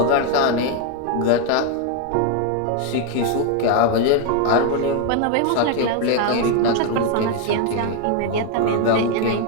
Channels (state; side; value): different; both; correlation 0.01